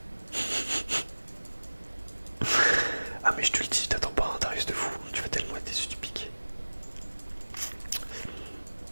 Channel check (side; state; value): both; inverted; correlation -1.00